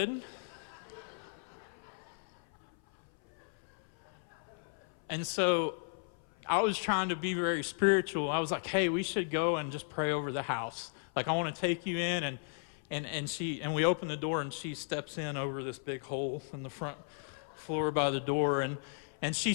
And so I was trying to be very spiritual. I was like, hey, we should go and just pray over the house. Like, I want to take you in. And we open the door, and she steps in over this big hole in the front floor by the door, and she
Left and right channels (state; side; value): silent; right; 54 dB below the other